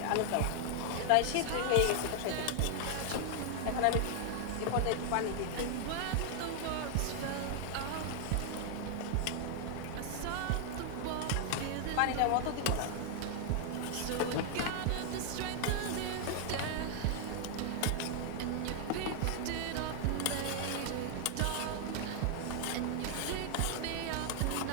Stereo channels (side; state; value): both; different; correlation 0.00